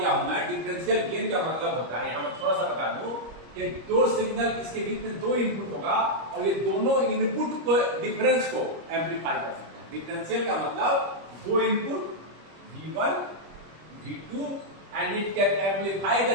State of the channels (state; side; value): late; left; 25 ms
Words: हूं मैं, डिफरेंशियल गेन का मतलब होता है, यहां मैं थोड़ा सा बता दूं कि दो सिग्नल, इसके बीच में दो इनपुट होगा और ये दोनों इनपुट को, डिफरेंस को एम्पलीफाई कर सकते हैं। डिफरेंशियल का मतलब दो input V1, V2 and it can amplify the